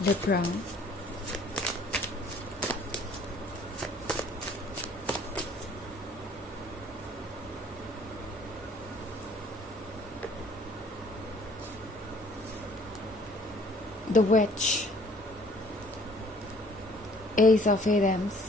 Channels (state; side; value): normal; both; correlation 0.57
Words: Libra. The witch, ace of एडम्स,